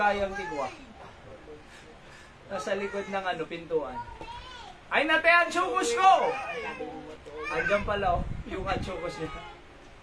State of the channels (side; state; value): both; identical; correlation 1.00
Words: tigwa. Nasa likod ng pintuan. Ay, natay ang chukos ko! Andiyan pala, yung chukos niya.